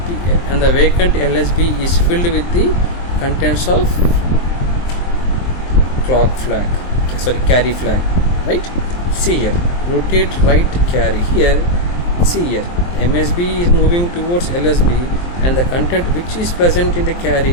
vacant LSB is filled with the contents of carry flag, right? See here, rotate right carry. Here, see here, MSB is moving towards LSB, and the content which is present in the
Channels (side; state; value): right; late; 23 ms